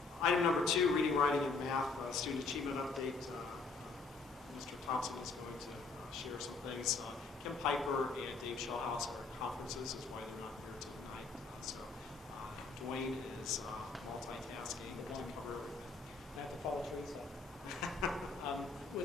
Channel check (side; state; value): right; quieter; 4.2 dB